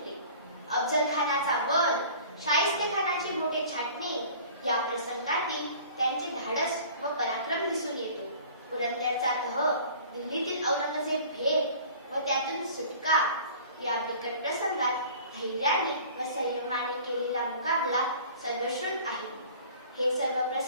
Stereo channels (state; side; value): inverted; both; correlation -0.46